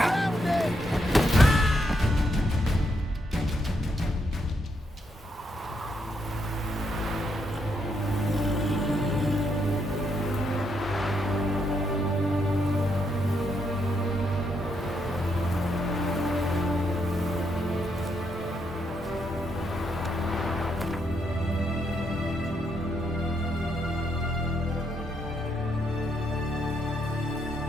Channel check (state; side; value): normal; both; correlation 0.77